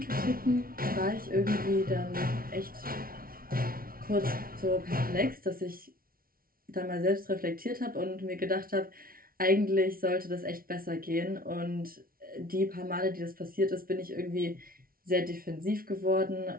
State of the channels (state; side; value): late; left; 0.43 ms